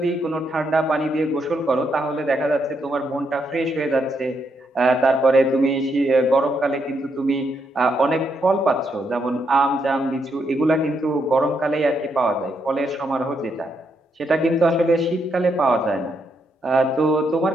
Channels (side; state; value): both; normal; correlation 0.78